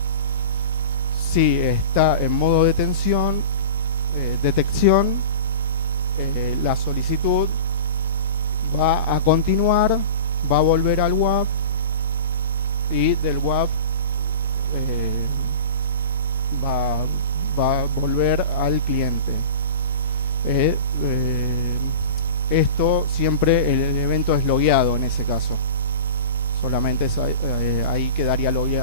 Si está en modo detección, la solicitud va a continuar, va a volver al WAF y del WAF va a volver al cliente. Esto siempre el evento es logueado en ese caso. Solamente ahí quedaría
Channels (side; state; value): both; inverted; correlation -0.34